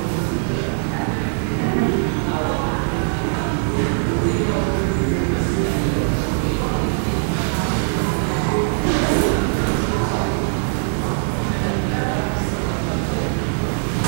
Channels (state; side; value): silent; left; digital silence